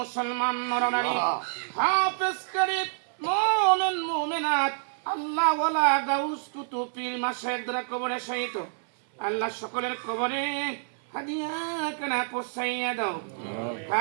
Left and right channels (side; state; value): left; silent; 57 dB below the other